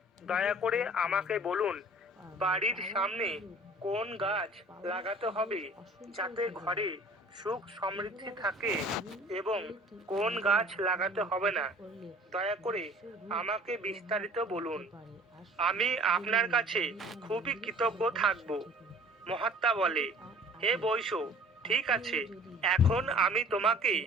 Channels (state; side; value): normal; both; correlation 0.49